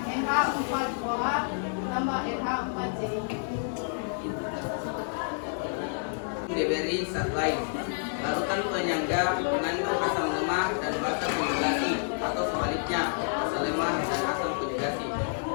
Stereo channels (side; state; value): right; silent; digital silence